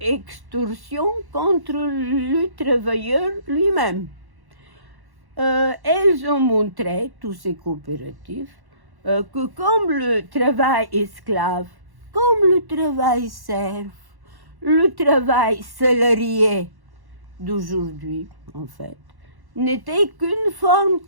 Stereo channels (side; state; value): left; late; 1.1 ms